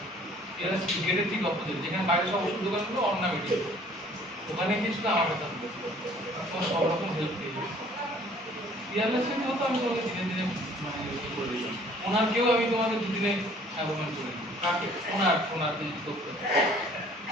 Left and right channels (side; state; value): both; normal; correlation 0.55